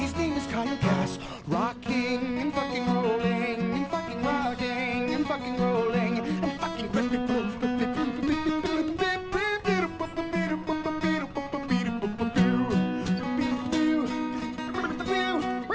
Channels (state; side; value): identical; both; correlation 1.00